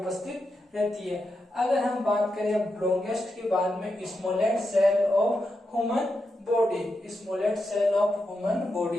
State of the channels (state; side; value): normal; both; correlation 0.86